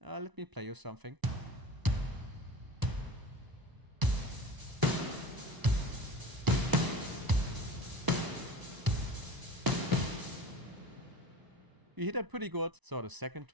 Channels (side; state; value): left; late; 1.0 ms